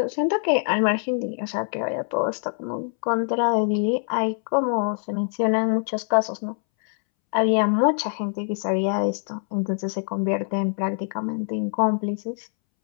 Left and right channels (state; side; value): silent; right; 62 dB below the other